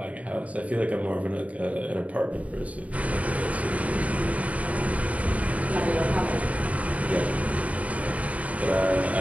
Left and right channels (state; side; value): late; left; 0.068 ms